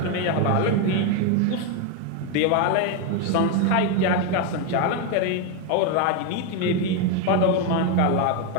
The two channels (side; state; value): both; different; correlation 0.02